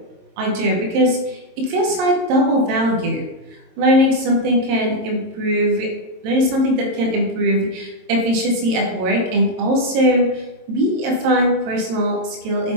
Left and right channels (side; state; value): left; late; 22 ms